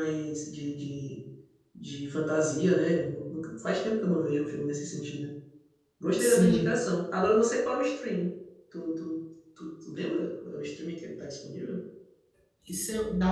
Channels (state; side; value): identical; both; correlation 1.00